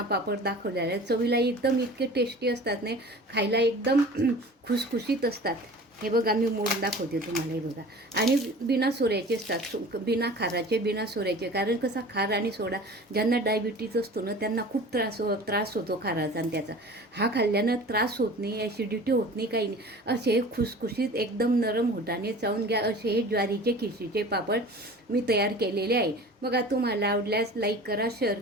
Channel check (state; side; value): normal; both; correlation 0.41